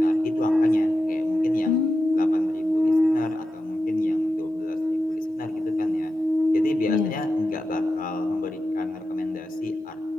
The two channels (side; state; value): both; normal; correlation 0.90